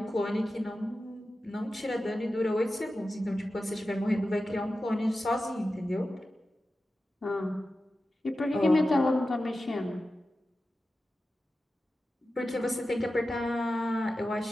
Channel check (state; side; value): normal; both; correlation 0.93